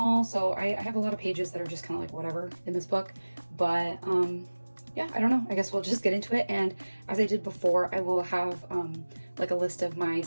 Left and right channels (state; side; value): inverted; both; correlation -1.00